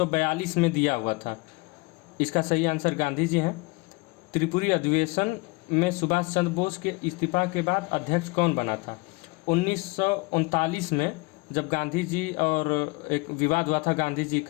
में दिया हुआ था। इसका सही आंसर गांधी जी हैं। त्रिपुरी अधिवेशन में सुभाष चंद्र बोस के इस्तीफा के बाद अध्यक्ष कौन बना था। 1939 में जब गांधी जी और एक विवाद हुआ था गांधी जी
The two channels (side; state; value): right; quieter; 26.3 dB